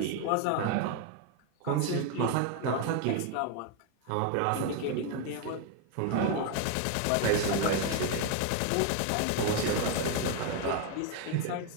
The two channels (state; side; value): different; both; correlation 0.01